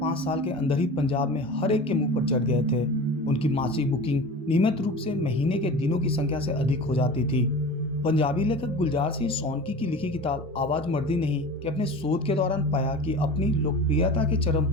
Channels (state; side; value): normal; both; correlation 0.35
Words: साल के अंदर ही पंजाब में हर एक के मुंह पर चढ़ गए थे। उनकी मासिक बुकिंग नियमित रूप से महीने के दिनों की संख्या से अधिक हो जाती थी। पंजाबी लेखक गुलजार सिंह सोनकी की लिखी किताब आवाज मर्दी नहीं कि अपने शोध के दौरान पाया कि अपनी लोकप्रियता के चरम